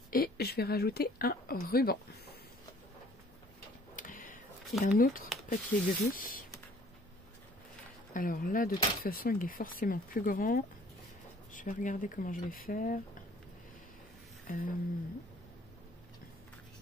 Et je vais rajouter un ruban. Et un autre papier gris. Alors là, de toute façon, il est forcément plus grand. Je vais regarder comment je vais faire.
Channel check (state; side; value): normal; both; correlation 0.56